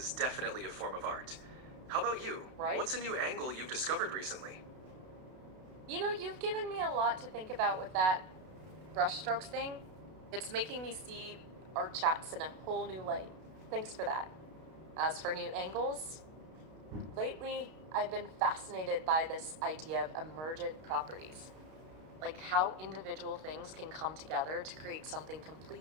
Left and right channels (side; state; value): left; late; 32 ms